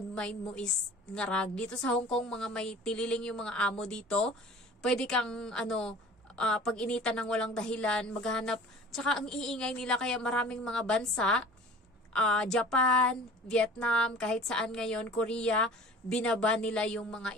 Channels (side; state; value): both; normal; correlation 0.44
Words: mind mo is ngarag. Dito sa Hong Kong, mga may tililing yung mga amo dito. Pwede kang pag-initan ng walang dahilan, maghanap. Tsaka ang iingay nila, kaya maraming mga bansa, Japan, Vietnam, kahit saan ngayon, Korea, binaba nila yung mga